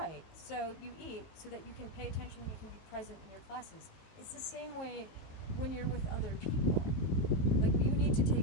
so you eat so that you can pay attention and you can be present in your classes. It's the same way when you're with other people. You need to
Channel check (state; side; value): late; right; 19 ms